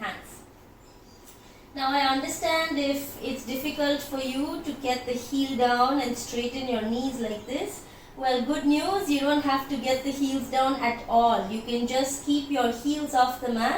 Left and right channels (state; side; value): identical; both; correlation 1.00